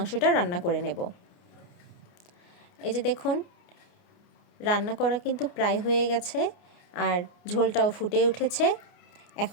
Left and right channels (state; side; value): late; right; 29 ms